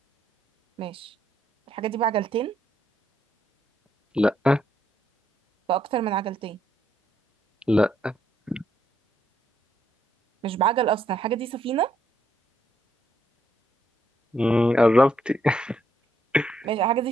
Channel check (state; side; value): normal; both; correlation 0.74